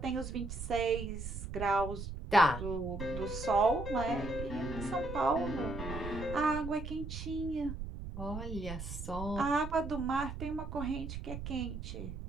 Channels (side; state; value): right; noise; rumble, 7 dB below the sound